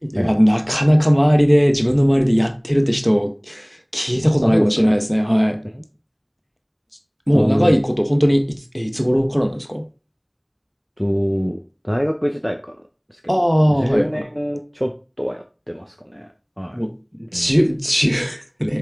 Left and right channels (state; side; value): identical; both; correlation 1.00